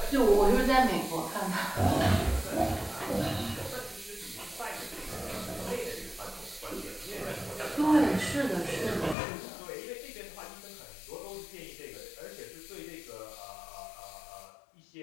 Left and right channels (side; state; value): right; drops out; at 9.2 s